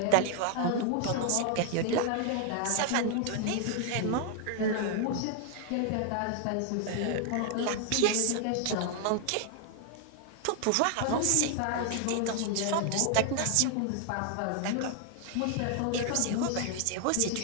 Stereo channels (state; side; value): different; both; correlation 0.00